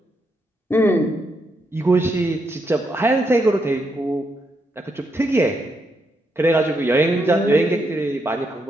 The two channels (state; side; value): normal; both; correlation 0.79